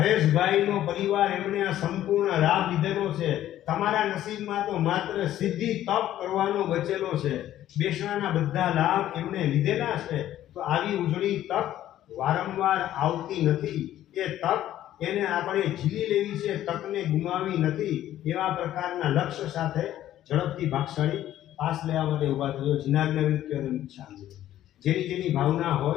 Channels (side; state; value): right; quieter; 12.7 dB